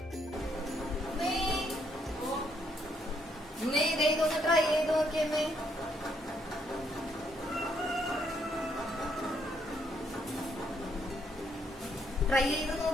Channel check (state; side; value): normal; both; correlation 0.72